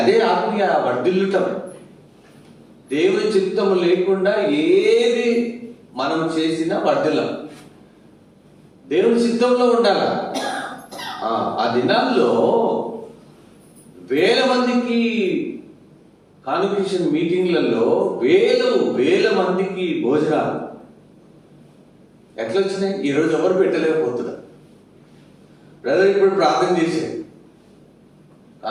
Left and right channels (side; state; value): both; identical; correlation 1.00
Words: అదే ఆత్మీయ వర్ధిల్లుటం. దేవుని చిత్తము లేకుండా ఏది మనం చేసినా వర్ధిల్లం. దేవుని చిత్తంలో ఉండాలి. ఆ దినాల్లో వేల మందికి కాన్వకేషన్ మీటింగ్లలో వేల మందికి భోజనాలు ఎట్లా వచ్చినాయి? ఈరోజు ఎవరు పెట్టలేకపోతున్నారు. బ్రదర్ ఇప్పుడు ప్రార్థన చేశాడు,